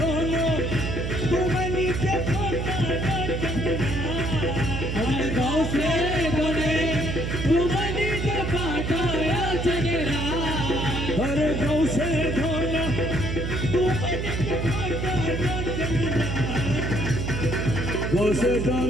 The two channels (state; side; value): noise; right; hum, 2 dB below the sound